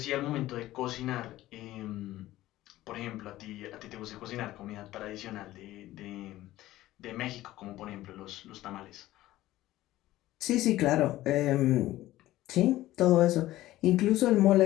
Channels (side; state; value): right; quieter; 15.7 dB